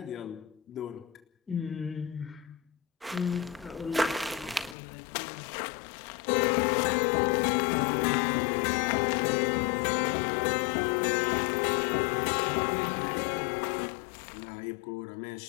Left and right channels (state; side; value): drops out; right; at 4.8 s